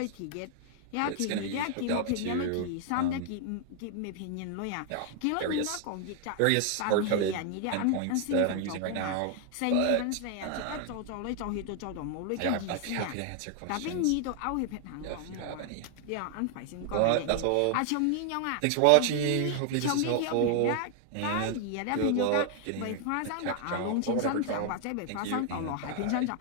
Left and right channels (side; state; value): both; different; correlation 0.00